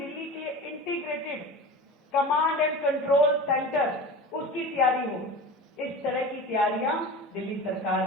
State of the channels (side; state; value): both; normal; correlation 0.33